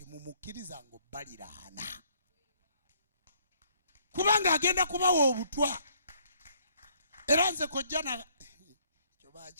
ng'obbaliraana kubanga agenda kubawa obutwa. Era nze kojja na kyo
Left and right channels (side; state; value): both; inverted; correlation -0.64